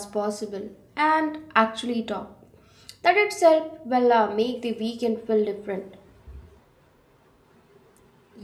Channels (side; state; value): both; identical; correlation 1.00